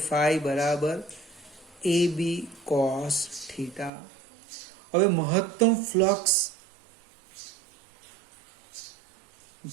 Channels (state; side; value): drops out; left; at 3.9 s